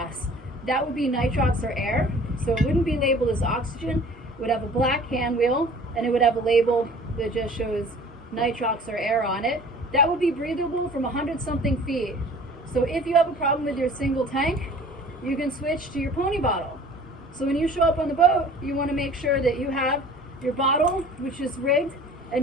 That would be nitrox or air, so it wouldn't be labeled as oxygen. It would have a black hand wheel, and it would have a label that just shows nitrox or air on it. That would be breathable from 100-something feet. So if you have a problem with your single tank, you can switch to your pony bottle. So when you show up on the boat, you want to make sure that you have your bottle, which is rigged,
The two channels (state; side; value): normal; both; correlation 0.47